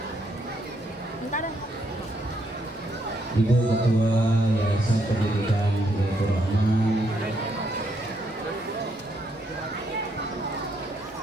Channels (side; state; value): both; normal; correlation 0.74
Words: Ibu Ketua Yayasan Pendidikan Hidayatul Rahman,